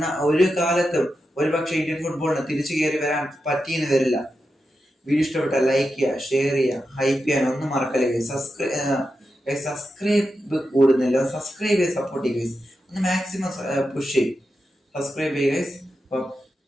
ഒരു കാലത്തും ഒരുപക്ഷെ ഇന്ത്യൻ ഫുട്ബോളിന് തിരിച്ചു കയറി വരാൻ പറ്റിയെന്ന് വരില്ല. വീഡിയോ ഇഷ്ടപ്പെട്ടാൽ ലൈക്ക് ചെയ്യുക, ഷെയർ ചെയ്യുക, ഹൈപ്പ് ചെയ്യാൻ ഒന്നും മറക്കല്ലേ. സബ്സ്ക്രൈബ് കൂടുന്നില്ല, സബ്സ്ക്രൈബ് ചെയ്ത് സപ്പോർട്ട് ചെയ്യുക. ഒന്ന് മാക്സിമം പുഷ് ചെയ്യും. സബ്സ്ക്രൈബ് ചെയ്യുക.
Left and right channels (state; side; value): normal; both; correlation 0.89